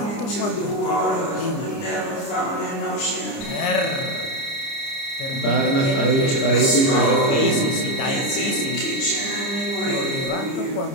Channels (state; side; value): late; right; 29 ms